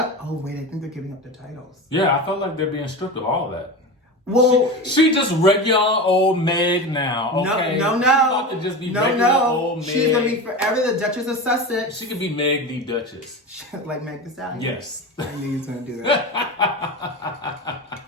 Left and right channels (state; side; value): normal; both; correlation 0.26